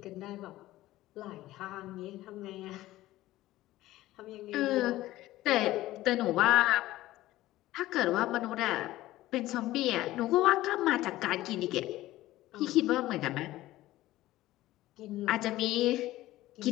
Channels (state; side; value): quieter; right; 16.2 dB